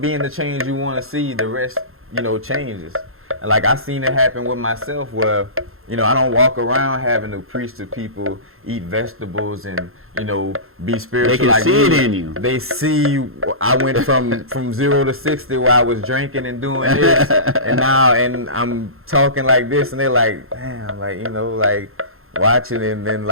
being the change you want to see, the rest, you know, changes. And like I seen it happen with myself where, you know, I don't walk around having to preach to people, eat vegetables and, you know, be spiritual. They can like see me. it in you. They see I went from 0 to 60 where I was drinking and doing this and now and I'm talking like this and they're like, damn, like, you know, like watching and then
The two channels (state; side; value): late; left; 0.61 ms